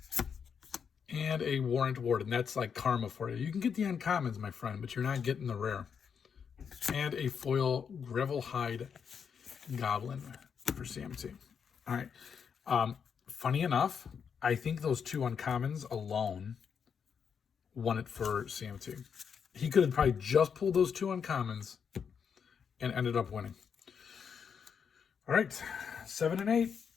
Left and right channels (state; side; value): quieter; right; 6.9 dB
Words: And a Warrant Warden. That's like karma for you. You can get the uncommons, my friend, but you're not getting the rare. And a foil Gravelhide Goblin for CMT. All right. Funny enough, I think those 2 uncommons alone won it for CMT. He could have probably just pulled those 2 uncommons and ended up winning. All right, 7 and 8.